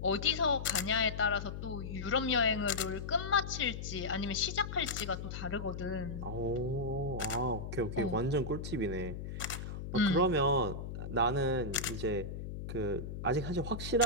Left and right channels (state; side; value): noise; left; hum, 7 dB below the sound